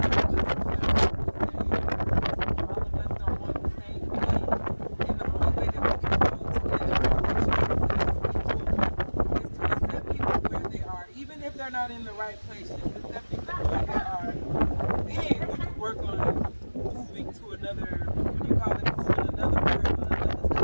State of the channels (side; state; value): both; inverted; correlation -1.00